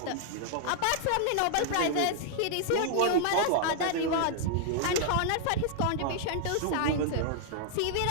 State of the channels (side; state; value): both; different; correlation -0.01